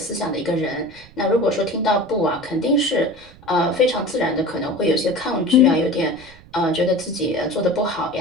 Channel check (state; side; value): noise; right; rumble, 23 dB below the sound